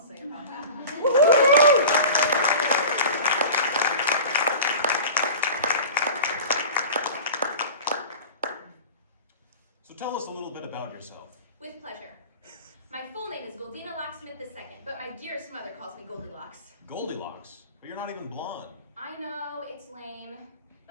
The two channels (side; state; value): both; inverted; correlation -0.36